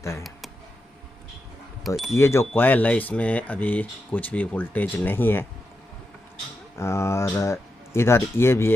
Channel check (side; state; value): both; normal; correlation 0.88